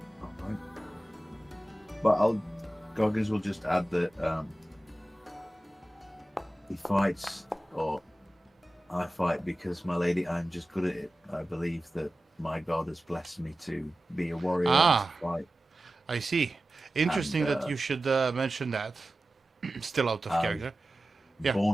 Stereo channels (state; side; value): normal; both; correlation 0.95